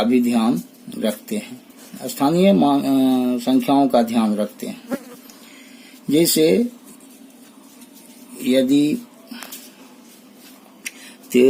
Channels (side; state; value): both; identical; correlation 1.00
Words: भी ध्यान रखते हैं, स्थानीय संख्याओं का ध्यान रखते हैं। जैसे यदि